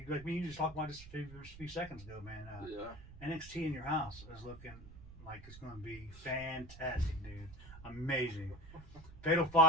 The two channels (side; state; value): right; noise; rumble, 16 dB below the sound